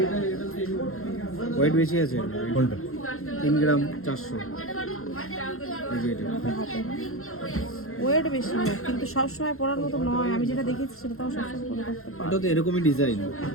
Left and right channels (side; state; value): right; late; 0.62 ms